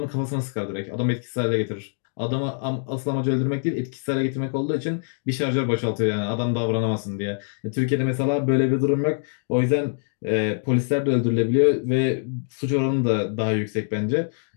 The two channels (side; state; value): right; silent; digital silence